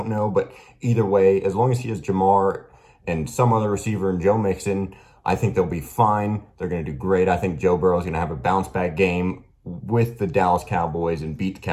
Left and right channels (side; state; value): both; identical; correlation 1.00